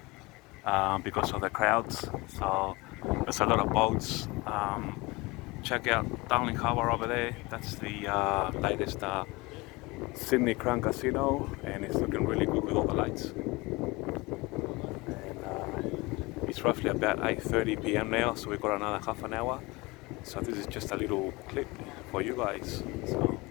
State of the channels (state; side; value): quieter; right; 23.6 dB